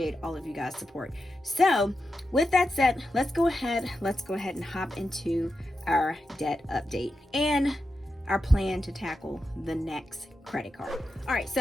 all of you guys' support. So with that said, let's go ahead and hop into our debt update and our plan to tackle the next credit card. All right,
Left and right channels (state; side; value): normal; both; correlation 0.89